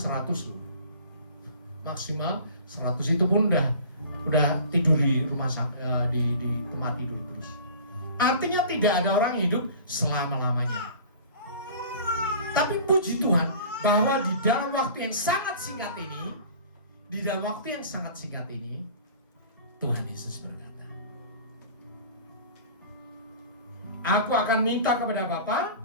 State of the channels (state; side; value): inverted; both; correlation -0.43